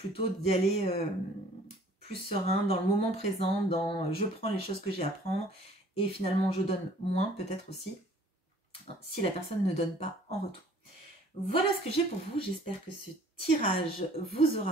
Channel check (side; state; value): both; normal; correlation 0.54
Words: d'y aller plus serein, dans le moment présent, dans je prends les choses que j'ai à prendre, et finalement je donne moins peut-être aussi, si la personne ne donne pas en retour. Voilà ce que j'ai pour vous, j'espère que ce tirage vous